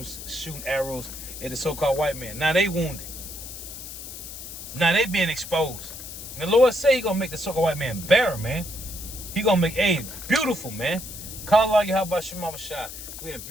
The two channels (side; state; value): left; noise; hiss, 11 dB below the sound